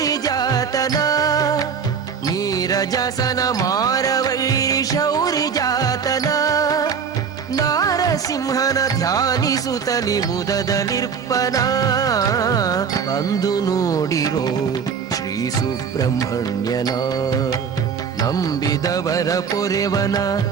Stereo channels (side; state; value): left; quieter; 6.6 dB